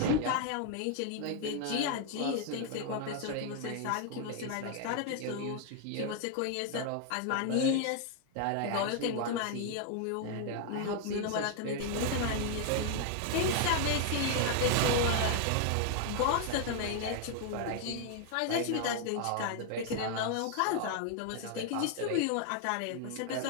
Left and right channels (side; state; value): both; different; correlation 0.00